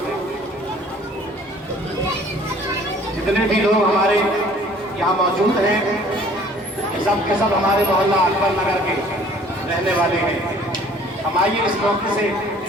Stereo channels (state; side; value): normal; both; correlation 0.54